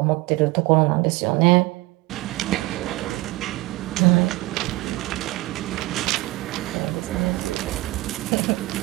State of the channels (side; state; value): left; quieter; 20.5 dB